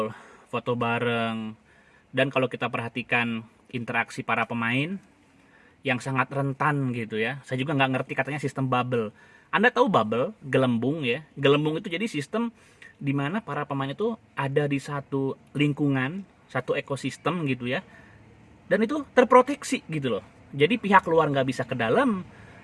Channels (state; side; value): identical; both; correlation 1.00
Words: foto bareng. Dan kalau kita perhatikan interaksi para pemain yang sangat rentan gitu ya, saya juga nggak ngerti katanya sistem bubble. Anda tahu bubble, gelembung ya. Gelembung itu jadi sistem di mana para pemain itu ada di satu lingkungan, satu ekosistem gitu ya, dan itu terproteksi gitu loh. Jadi pihak luar nggak bisa ke dalam,